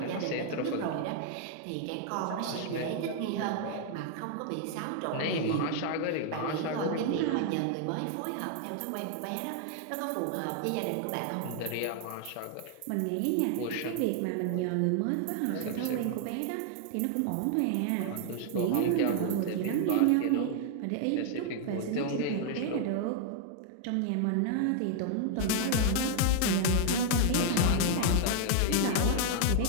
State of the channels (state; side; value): different; both; correlation 0.00